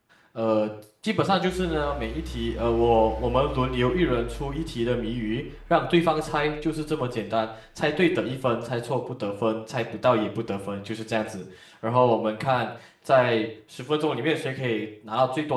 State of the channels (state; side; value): identical; both; correlation 1.00